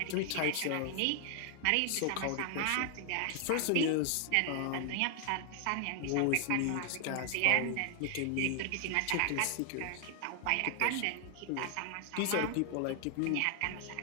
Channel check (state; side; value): different; both; correlation 0.00